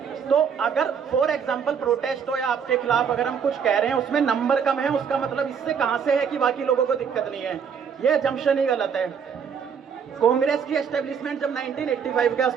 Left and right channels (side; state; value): left; quieter; 7.0 dB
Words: तो अगर फॉर एग्जाम्पल प्रोटेस्ट हो या आपके खिलाफ अगर हम कुछ कह रहे हैं उसमें नंबर कम है, उसका मतलब इससे कहाँ से है कि बाकी लोगों को दिक्कत नहीं है? ये जम्पशन ही गलत है। कांग्रेस की एस्टेब्लिशमेंट जब 1985 के